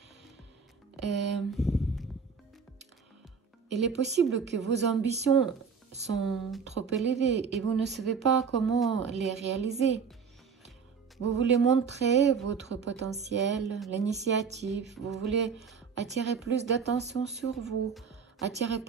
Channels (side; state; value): left; quieter; 6.0 dB